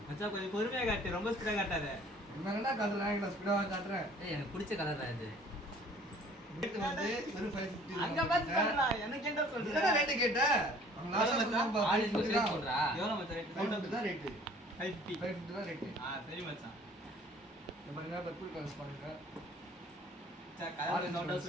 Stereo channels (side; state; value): both; normal; correlation 0.53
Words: மச்சான் கொஞ்சம் பொறுமையா காட்டு, ரொம்ப ஸ்பீடா காட்டாத. என்னடா காட்டுறேன், நான் ஸ்பீடா காட்டுறேன். எனக்கு பிடிச்ச கலர் தான் இது. ரேட் வந்து வெறும் 550. அங்க பாத்துடா, எனக்கு என்ன சொல்ற? என்ன ரேட் கேட்ட? அவங்க லாஸ்ட் சொன்னாங்க ஆலிஸ் ரேட் சொல்றா. எவ்வளவு மச்சான் ரேட்? 550 தான் ரேட். 550 தான் ரேட். சரி மச்சான். இந்த பாருங்க பர்பிள் கலர்ஸ் பாருங்க. மச்சான் கலர் நோட்டா